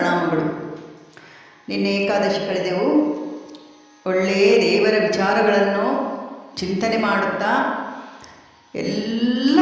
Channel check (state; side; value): identical; both; correlation 1.00